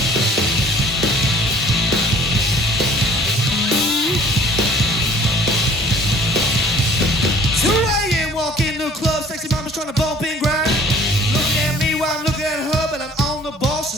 Walk in the club, sexy mama's trying to bump and grind. Looking at me while I'm looking at her, but I'm on the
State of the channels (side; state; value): both; normal; correlation 0.52